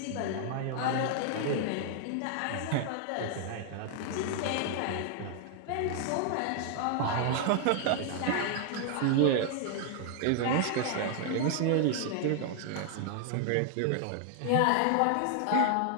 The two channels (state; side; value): different; both; correlation 0.00